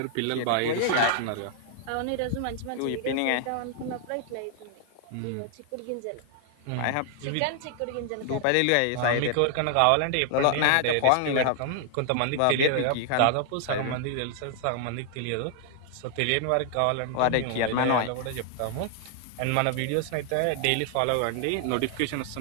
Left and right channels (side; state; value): both; different; correlation 0.00